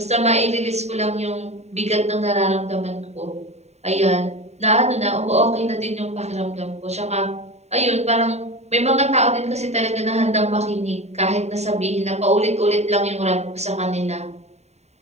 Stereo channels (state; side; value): late; left; 0.32 ms